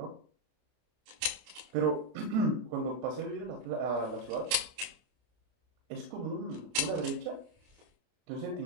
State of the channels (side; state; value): left; late; 32 ms